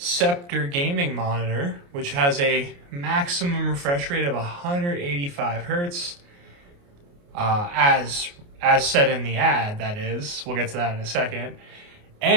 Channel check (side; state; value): left; late; 29 ms